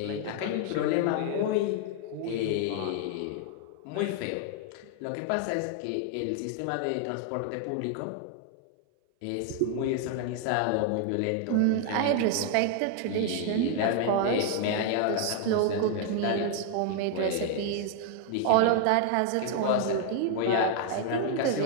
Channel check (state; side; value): different; both; correlation 0.00